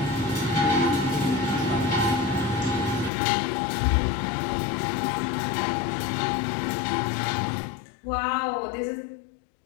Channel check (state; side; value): drops out; right; at 3.1 s